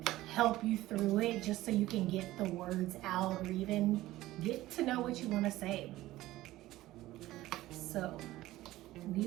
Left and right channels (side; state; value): left; quieter; 16.4 dB